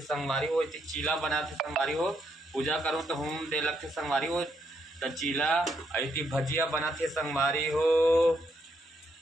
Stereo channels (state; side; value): normal; both; correlation 0.76